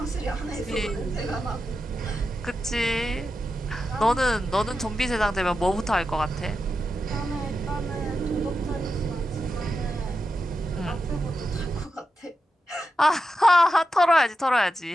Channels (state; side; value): normal; both; correlation 0.89